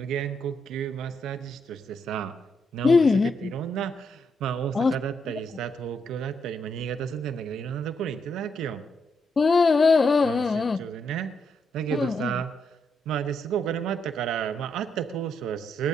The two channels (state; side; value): normal; both; correlation 0.79